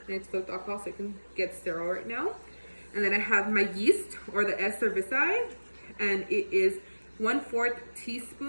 And it's filled with alcohol so it can get sterile right now. And then I have my yeast, or the S. cerevisiae, and it is 1/4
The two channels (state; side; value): inverted; both; correlation -1.00